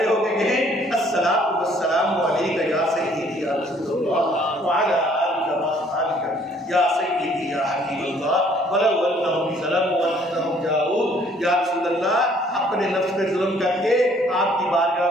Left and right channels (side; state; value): both; normal; correlation 0.60